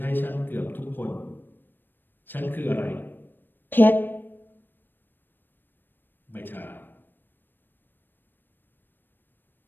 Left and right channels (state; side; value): late; right; 0.094 ms